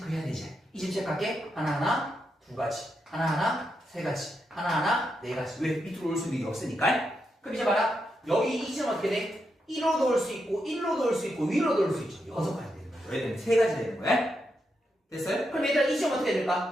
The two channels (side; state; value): both; normal; correlation 0.83